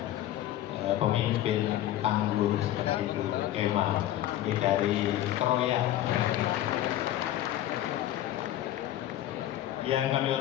pemimpin tangguh seperti Bu Emma. Ini dari Kroya. Yang kami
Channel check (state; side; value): quieter; right; 13.3 dB